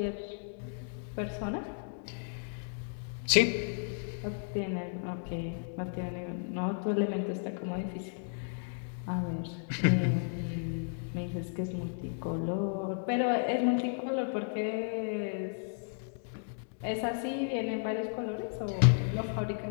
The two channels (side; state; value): right; silent; digital silence